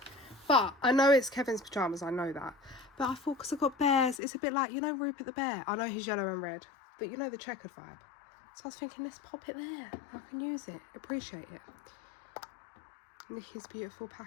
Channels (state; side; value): drops out; right; at 4.2 s